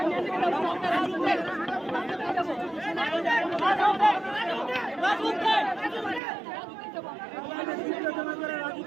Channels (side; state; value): left; drops out; at 6.2 s